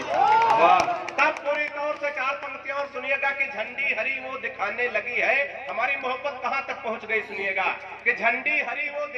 है। वाह। तब पूरी तौर से 4 पंक्तियां और सुनिएगा कि झंडी हरी वो दिखाने लगी है। हमारी मोहब्बत कहां तक पहुंच गई सुनिएगा कि झंडी हरी वो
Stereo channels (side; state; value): both; identical; correlation 1.00